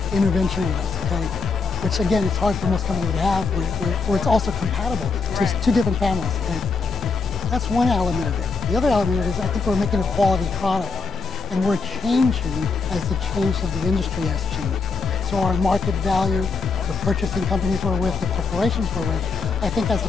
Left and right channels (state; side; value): quieter; right; 4.5 dB